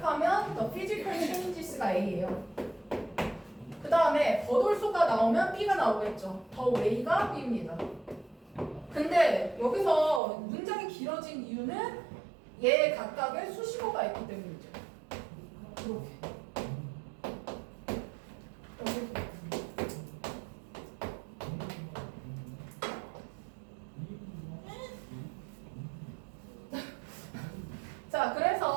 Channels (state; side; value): drops out; left; at 10.2 s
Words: the physical changes가 A예요. 그 다음에 버돌소가 나오면 B가 나오겠죠. 더 웨이가 B입니다. 근데 여기서 문장이 길어진 이유는 얘 각각의 수식어가 있기 때문이죠. 이렇게. 자,